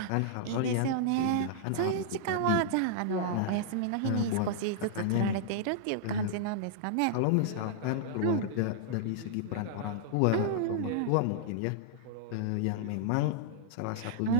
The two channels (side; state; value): both; different; correlation -0.01